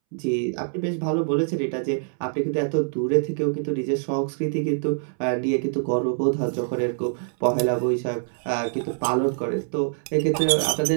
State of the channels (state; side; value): silent; left; 62 dB below the other